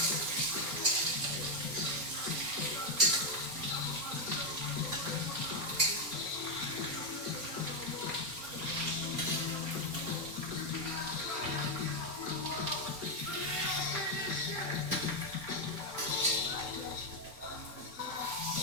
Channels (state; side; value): late; left; 4.3 ms